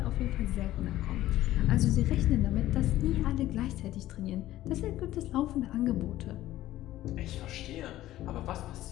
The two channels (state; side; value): quieter; right; 14.7 dB